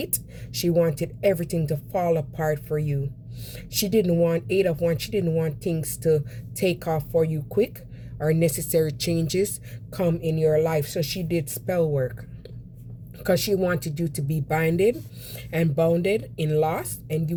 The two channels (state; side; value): identical; both; correlation 1.00